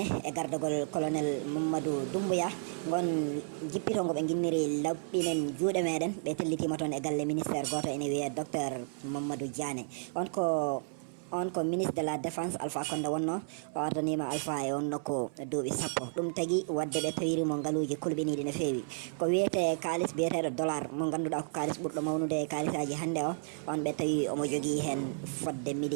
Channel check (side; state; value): left; silent; 56 dB below the other